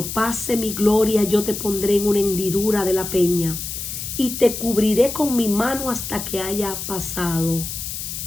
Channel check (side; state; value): left; noise; hiss, 6 dB below the sound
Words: pase mi gloria yo te pondré en una hendidura de la peña y te cubriré con mi mano hasta que haya pasado.